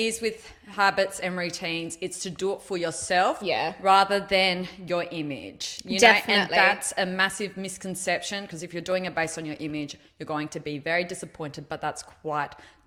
with habits and routines, it's to do it for yourself rather than your image. And Definitely. that's a massive misconception, because if you're doing it based on your image, you're going to be very disappointed, but that's quite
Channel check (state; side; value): identical; both; correlation 1.00